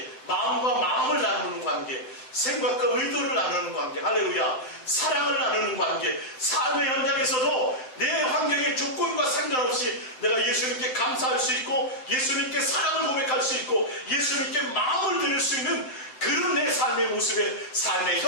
마음과 마음을 나누는 관계, 생각과 의도를 나누는 관계, 할렐루야, 사랑을 나누는 관계, 삶의 현장에서도 내 환경의 조건과 상관없이 내가 예수님께 감사할 수 있고 예수님께 사랑을 고백할 수 있고 예수님께 마음을 드릴 수 있는 그런 내 삶의 모습에 삶의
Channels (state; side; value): late; right; 7.8 ms